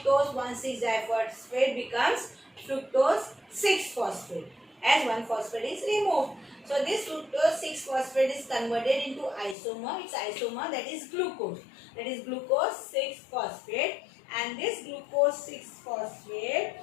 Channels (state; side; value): drops out; right; at 9.6 s